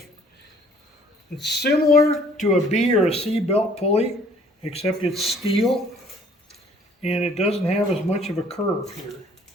it's similar to a B or a C belt pulley, except it's steel and it doesn't have as much of a curve here.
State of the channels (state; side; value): normal; both; correlation 0.57